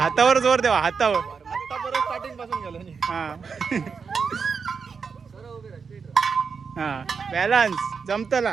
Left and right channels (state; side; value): quieter; left; 5.6 dB